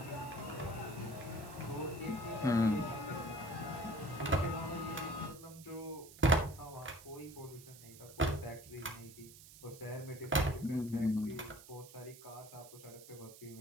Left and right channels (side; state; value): right; noise; hiss, 18 dB below the sound